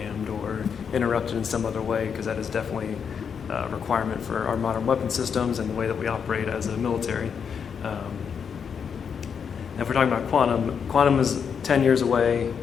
or interrupted in some other way, because that is definitely a requirement for our modern weapon systems and the way that we operate as a military. If we're talking about quantum is 10 years away,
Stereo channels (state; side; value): quieter; right; 6.9 dB